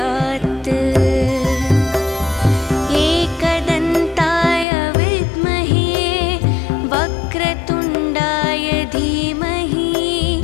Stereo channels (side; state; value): right; drops out; at 4.7 s